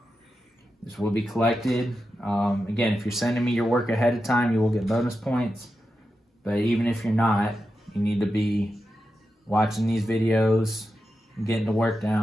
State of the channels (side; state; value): both; normal; correlation 0.89